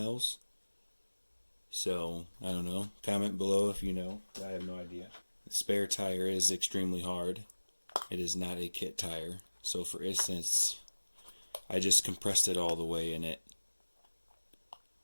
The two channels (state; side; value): inverted; both; correlation -1.00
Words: So, I don't know. Comment below if you know. I have no idea. The spare tire is extremely hard. It is not a kit tire. So, for instance, I just compressed it all the way and it